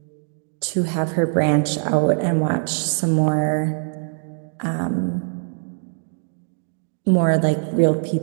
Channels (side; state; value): left; silent; digital silence